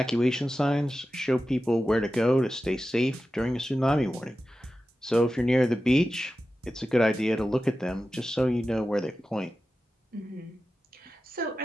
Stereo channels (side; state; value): both; normal; correlation 0.93